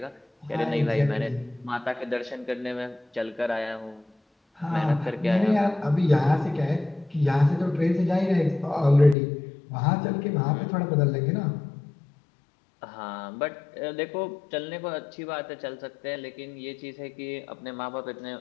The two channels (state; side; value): drops out; right; at 9.2 s